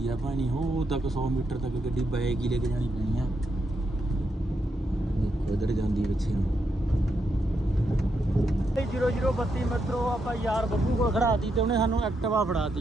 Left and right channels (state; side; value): normal; both; correlation 0.81